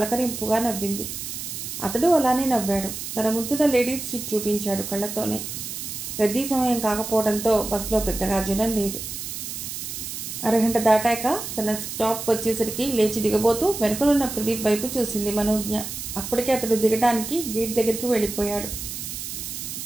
నవ్వింది. అతడు అలానే నవ్వాడు. తన ముందున్న లేడీస్ సీట్ చూపించాడు కళ్ళతోనే. రద్దీ సమయం కాకపోవడంతో బస్సులో పెద్దగా జనం లేదు. అరగంట దాటాక తన స్టాప్ వచ్చేసరికి లేచి దిగబోతూ వెనుకలున్న ప్రదీప్ వైపు చూసింది మనోజ్ఞ. అప్పటికే అతడు దిగడానికి గేట్ దగ్గరికి వెళ్ళిపోయాడు.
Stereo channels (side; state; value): right; noise; hiss, 7 dB below the sound